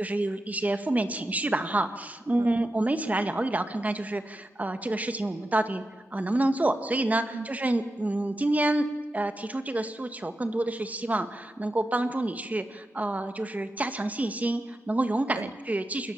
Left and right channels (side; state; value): both; normal; correlation 0.89